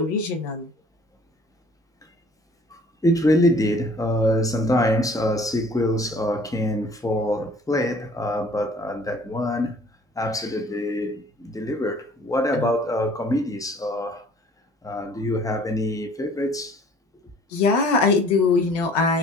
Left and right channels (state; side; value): normal; both; correlation 0.53